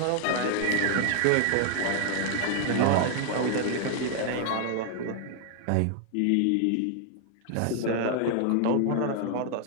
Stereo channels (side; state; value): both; different; correlation 0.00